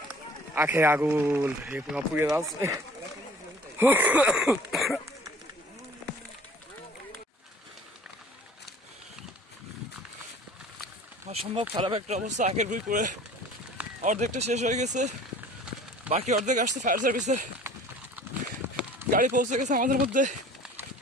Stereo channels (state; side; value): normal; both; correlation 0.48